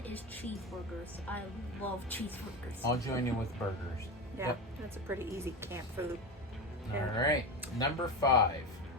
is cheeseburgers. I love cheeseburgers. I'll join you with burgers. Yeah. Yep. That's a pretty easy camp food. Yeah. All right. Number 5.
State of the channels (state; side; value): normal; both; correlation 0.20